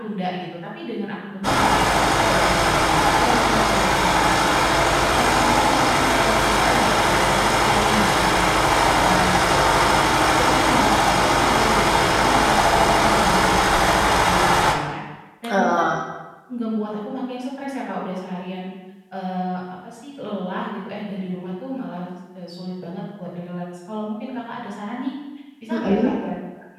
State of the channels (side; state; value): both; identical; correlation 1.00